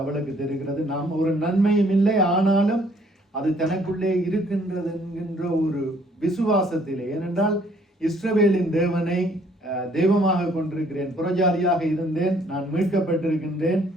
அவளுக்கு தெரிகிறது. நாம் ஒரு நன்மையும் இல்லை, ஆனாலும் அது தனக்குள்ளே இருக்கின்றது என்கின்ற ஒரு விசுவாசத்திலே. ஏனென்றால் இஸ்ரவேலின் தேவனை தெய்வமாக கொண்டிருக்கிறேன், புறஜாதியாக இருந்தேன், நான் மீட்கப்பட்டிருக்கின்றேன்,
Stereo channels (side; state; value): both; normal; correlation 0.62